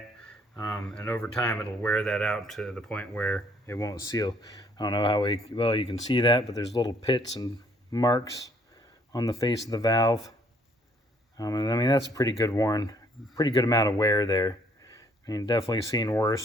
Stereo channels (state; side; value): normal; both; correlation 0.64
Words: And over time it'll wear that out to the point where it won't seal. I don't know how well you can see that, but there's little pits and marks on the face of the valve. And I mean, that's pretty good amount of wear there. I mean, definitely seen